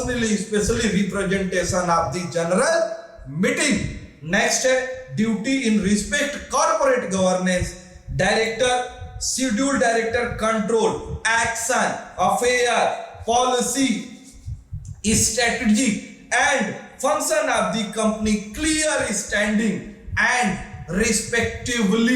specially representation of the general meeting. Next है duty in respect corporate governance. Director, schedule director control, action, affair, policy, strategy and function of the company, clear standing and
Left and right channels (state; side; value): identical; both; correlation 1.00